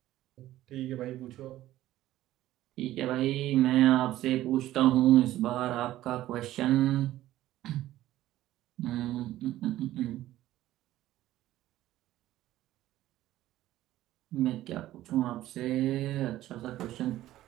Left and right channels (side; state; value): left; quieter; 14.5 dB